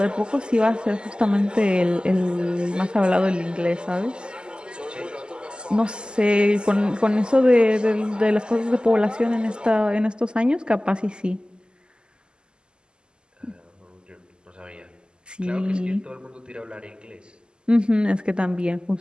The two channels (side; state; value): left; late; 0.048 ms